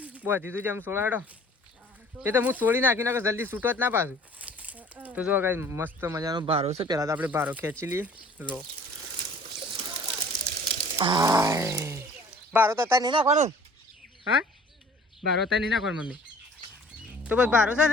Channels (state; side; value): normal; both; correlation 0.50